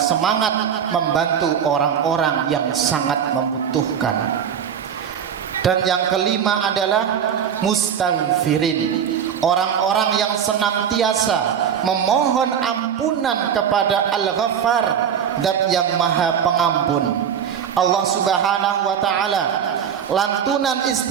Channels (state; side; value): quieter; left; 8.2 dB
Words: membantu orang-orang yang sangat membutuhkan. Dan yang kelima adalah mustaghfirin, orang-orang yang senantiasa memohon ampunan kepada Al-Ghaffar, Zat yang Maha Pengampun. Allah Subhanahu wa taala lantunan